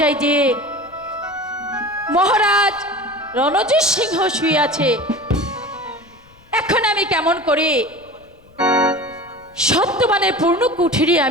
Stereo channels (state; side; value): noise; left; rumble, 28 dB below the sound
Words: যে মহারাজ রণজিৎ সিংহ শুয়ে আছে, এখন আমি কেমন করে সত্যবানের পূর্ণ কুঠিরে